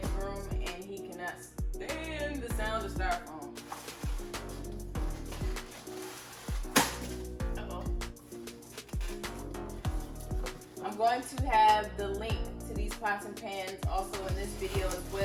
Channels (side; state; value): both; identical; correlation 1.00